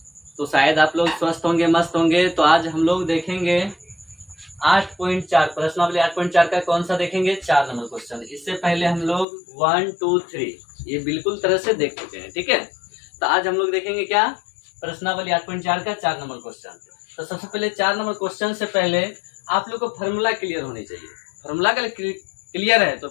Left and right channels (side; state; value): right; drops out; at 9.2 s